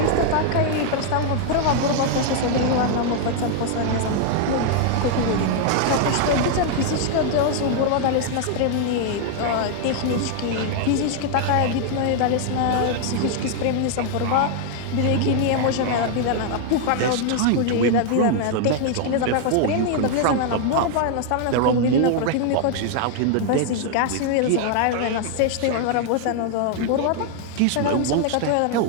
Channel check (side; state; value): both; different; correlation 0.00